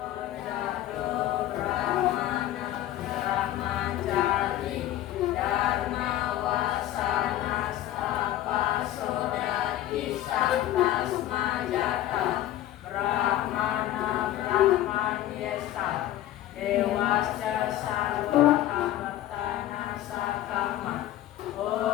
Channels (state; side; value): quieter; right; 13.6 dB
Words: Dewasya sarwa amartana sakama.